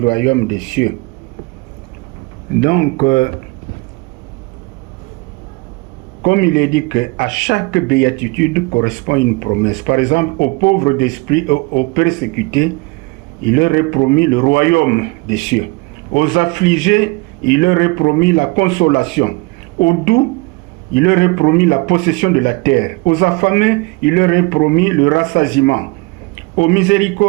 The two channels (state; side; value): quieter; left; 25.7 dB